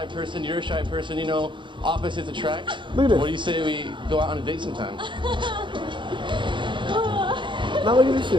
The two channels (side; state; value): left; late; 0.23 ms